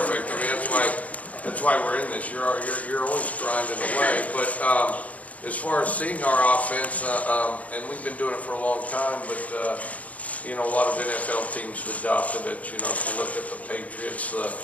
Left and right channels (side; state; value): right; late; 0.070 ms